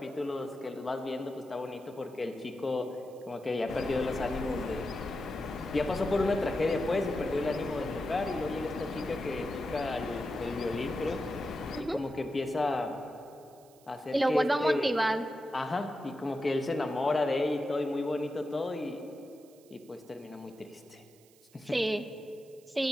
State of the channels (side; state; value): right; noise; hiss, 28 dB below the sound